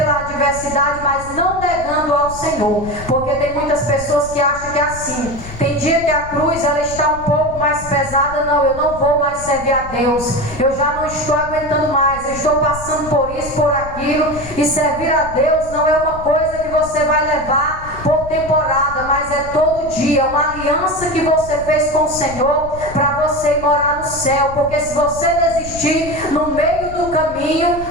adversidade, mas não negando ao Senhor, porque tem muitas pessoas que acham que é assim. Tem dia que a cruz ela está um pouco mais pesada. Não, eu não vou mais servir a Deus, eu já não estou aguentando mais, eu estou passando por isso, por aquilo. E servir a Deus não é uma coisa que você vai levar por temporada, mas é todo dia, uma aliança que você fez com o Senhor para você ir morar no céu. Porque se você desistir no meio do caminho,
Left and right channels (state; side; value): noise; left; rumble, 13 dB below the sound